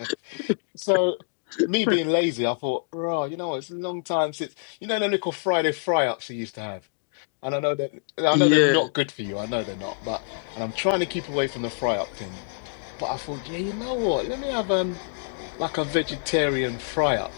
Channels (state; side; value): silent; right; digital silence